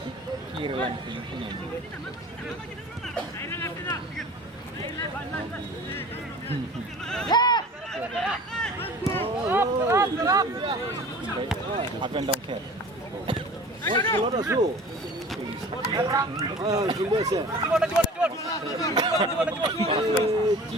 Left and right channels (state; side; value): normal; both; correlation 0.42